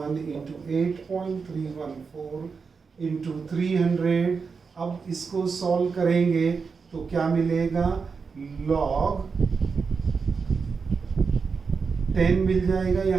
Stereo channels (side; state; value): left; quieter; 5.2 dB